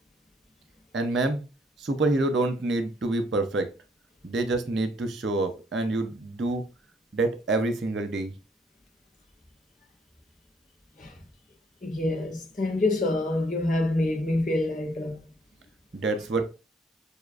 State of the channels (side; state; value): both; normal; correlation 0.66